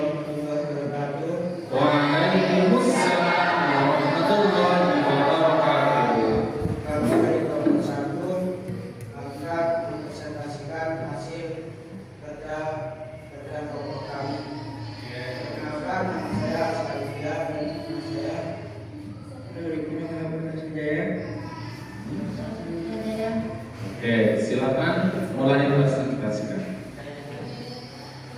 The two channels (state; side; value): identical; both; correlation 1.00